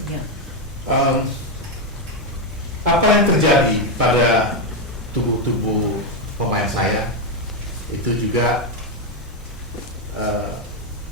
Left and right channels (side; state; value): both; normal; correlation 0.05